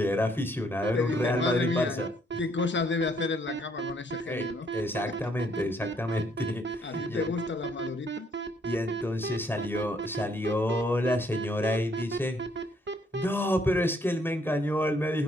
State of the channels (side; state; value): both; normal; correlation 0.67